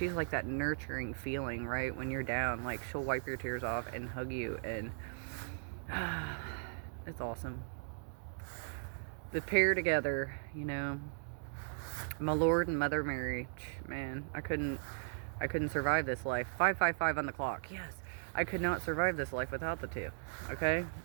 like that nurturing feeling, right? When you're down, like she'll wipe your tears off and hug you, and it's awesome. The pair together, you know, my Lord and Mother Mary, man, I couldn't survive this life. 555 on the clock. Yes. I could not survive this life without the two. Okay?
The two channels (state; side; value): silent; left; digital silence